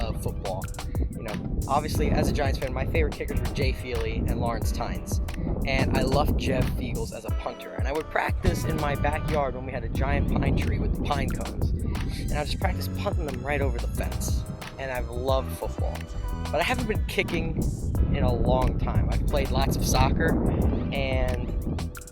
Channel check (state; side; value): identical; both; correlation 1.00